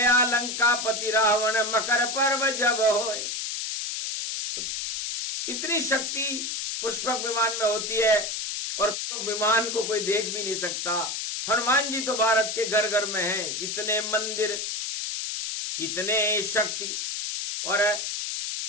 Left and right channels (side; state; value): left; noise; hiss, 3 dB below the sound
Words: लंकापति रावण मकर पर्व जब होए। इतनी शक्ति पुष्पक विमान में होती है और पुष्पक विमान को कोई देख भी नहीं सकता। हनुमान जी तो भारत के घर घर में हैं। इतने मंदिर, इतने शक्ति, और